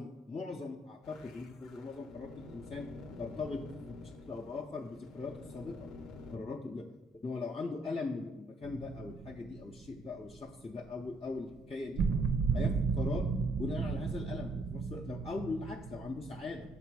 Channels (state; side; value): normal; both; correlation 0.69